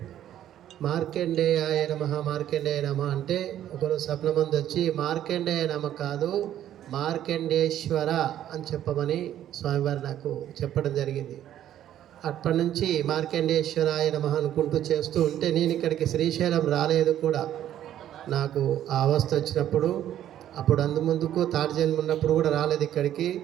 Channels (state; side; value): quieter; left; 11.5 dB